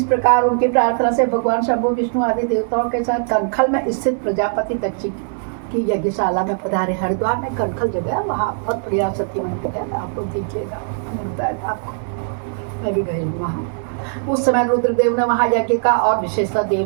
प्रकार उनकी प्रार्थना से भगवान शंभु विष्णु आदि देवताओं के साथ कनखल में स्थित प्रजापति दक्ष की यज्ञशाला में पधारे। हरिद्वार में कनखल जगह, वहाँ बहुत बढ़िया सती मंदिर है, आप लोग देखिएगा, मिलता है आपको, मैं भी गई हूँ वहाँ। उस समय रुद्रदेव ने वहाँ यज्ञ का और विशेषतः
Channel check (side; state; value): left; silent; 65 dB below the other